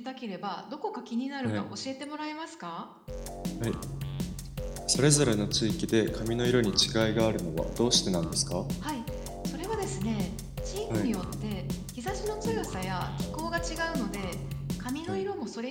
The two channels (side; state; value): both; identical; correlation 1.00